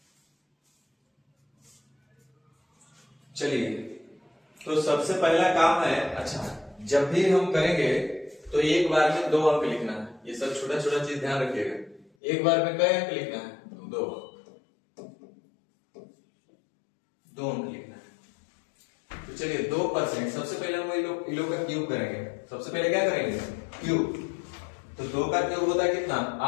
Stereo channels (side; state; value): right; drops out; at 12.1 s